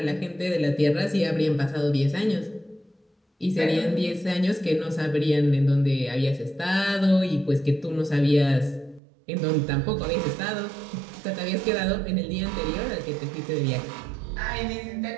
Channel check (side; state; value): left; drops out; at 9.0 s